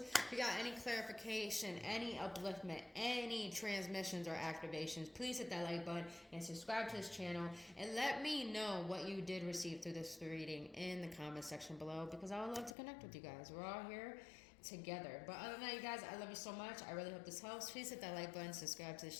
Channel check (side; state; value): right; drops out; at 12.7 s